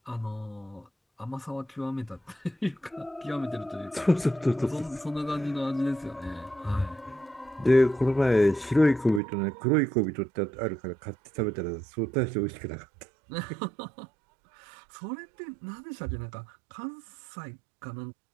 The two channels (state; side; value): drops out; left; at 9.2 s